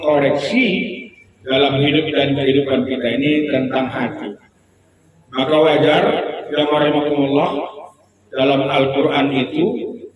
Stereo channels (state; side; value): identical; both; correlation 1.00